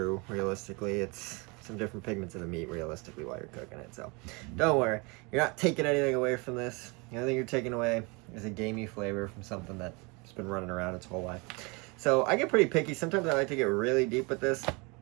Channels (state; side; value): quieter; left; 28.8 dB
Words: realistically. It's some different pigments in the meat, realistically, while you're cooking it. So don't worry. You're not taking anything away from this. The only thing you're taking away is a gamey flavor from something that's been running around its whole life. So I get pretty picky. Sometimes I like to get really deep with this,